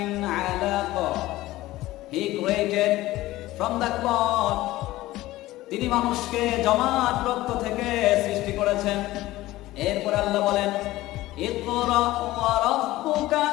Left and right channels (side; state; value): right; quieter; 17.0 dB